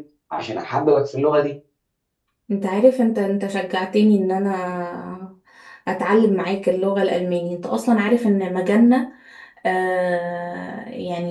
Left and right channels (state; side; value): identical; both; correlation 1.00